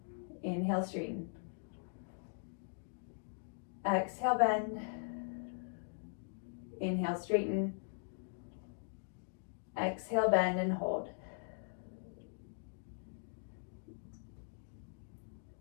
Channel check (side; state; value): right; silent; digital silence